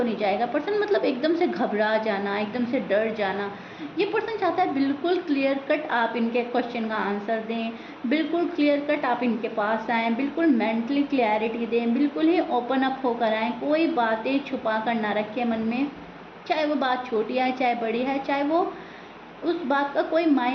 नहीं जाएगा। पर्सन मतलब एकदम से घबरा जाना, एकदम से डर जाना। ये पर्सन चाहता है बिल्कुल क्लियर कट आप इनके क्वेश्चन का आंसर दें, बिल्कुल क्लियर कट आप इनके पास आएँ, बिल्कुल मेंटली क्लैरिटी दें, बिल्कुल ही ओपन अप होकर आएँ, कोई बातें छुपा कर ना रखें मन में, चाहे वो बात छोटी है चाहे बड़ी है, चाहे वो उस बात का कोई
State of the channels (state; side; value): identical; both; correlation 1.00